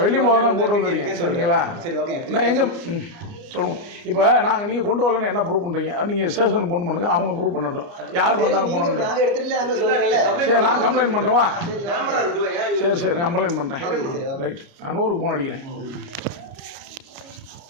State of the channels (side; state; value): left; late; 29 ms